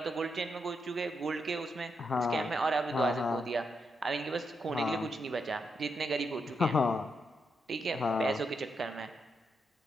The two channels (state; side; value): normal; both; correlation 0.82